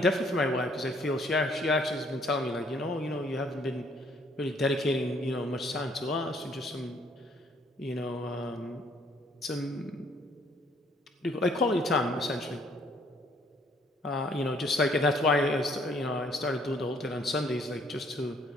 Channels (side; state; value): both; normal; correlation 0.63